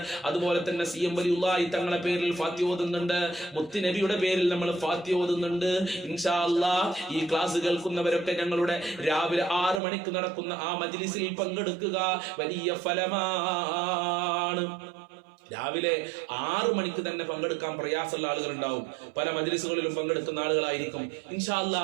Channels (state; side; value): drops out; left; at 9.8 s